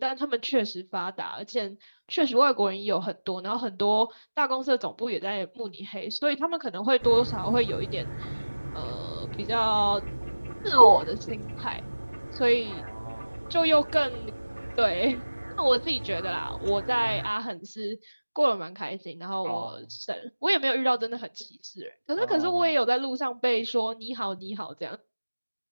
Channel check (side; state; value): both; inverted; correlation -1.00